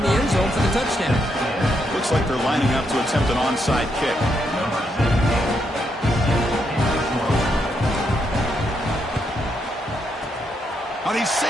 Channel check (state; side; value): normal; both; correlation 0.79